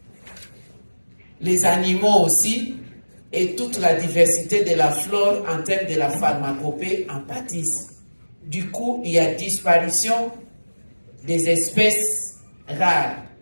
les animaux aussi, et toute la diversité de la flore en termes de la pharmacopée en pâtissent. Du coup, il y a disparition des espèces rares.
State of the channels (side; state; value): both; inverted; correlation -1.00